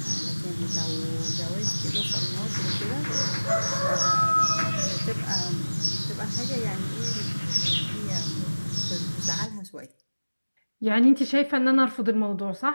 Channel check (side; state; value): both; inverted; correlation -1.00